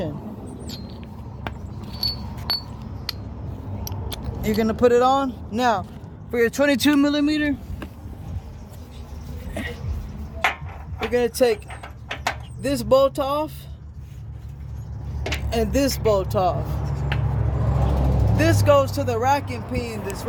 You're gonna put it on. Now, for your 22 millimeter, you're gonna take this bolt off and this bolt off. This goes to the rack and pinion that's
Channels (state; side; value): identical; both; correlation 1.00